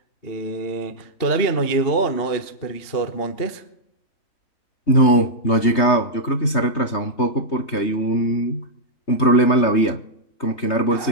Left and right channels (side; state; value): right; late; 3.2 ms